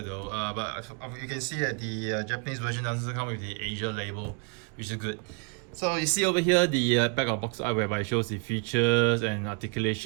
though, but you can see that the Japanese version doesn't come with the Asia label, which is good. So you see over here the back of box art whereby it shows the features and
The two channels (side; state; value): left; quieter; 34.5 dB